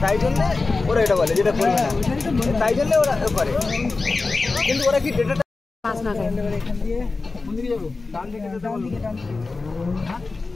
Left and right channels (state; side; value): quieter; right; 3.8 dB